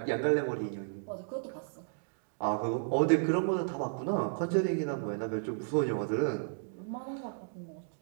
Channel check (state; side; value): silent; left; digital silence